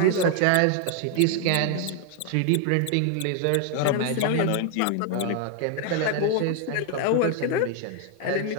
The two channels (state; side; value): different; both; correlation 0.00